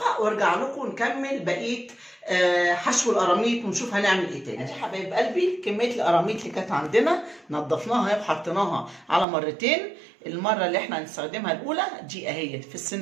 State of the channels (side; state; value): left; drops out; at 9.2 s